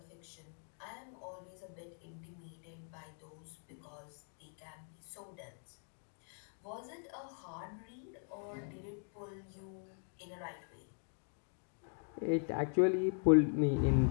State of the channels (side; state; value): right; silent; 51 dB below the other